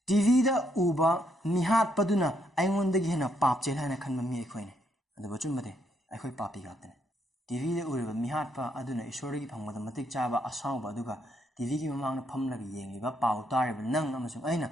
TV da uba mihat paduna aingon dagi hena pap chel hana khanma mi aikoi ne adu bachum made aikoi papi gatne TV da uriba mihatpa aduna isori phangbada matik chaba asawba aduga TV gi mamang na phamlaga yengliba paw tariba nang amasung aina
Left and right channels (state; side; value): normal; both; correlation 0.74